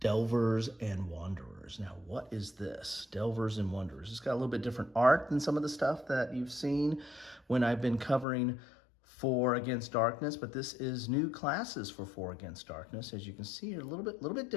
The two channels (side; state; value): right; drops out; at 8.2 s